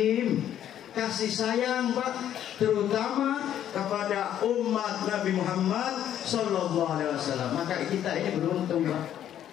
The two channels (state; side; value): quieter; right; 10.7 dB